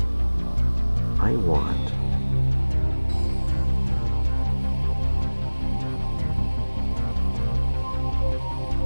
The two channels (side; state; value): both; inverted; correlation -1.00